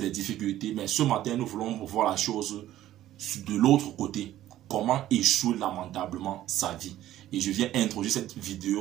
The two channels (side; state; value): left; quieter; 13.5 dB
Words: difficultés. Mais ce matin, nous voulons voir la chose de l'autre côté. Comment échouer lamentablement sa vie. Et je viens introduire cette